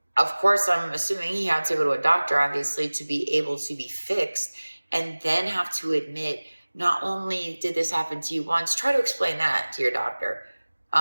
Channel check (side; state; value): both; inverted; correlation -1.00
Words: of course, I'm assuming he had to go to a doctor, obviously, to be able to be fixed, and then have to admit, not only did this happen to you once, try to explain that to your doctor.